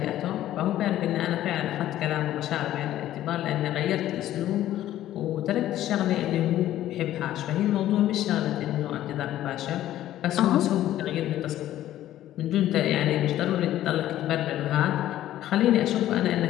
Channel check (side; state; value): right; quieter; 13.2 dB